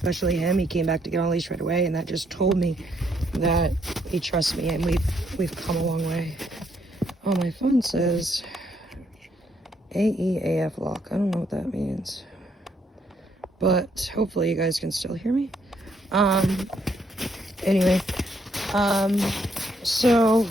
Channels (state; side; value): normal; both; correlation 0.72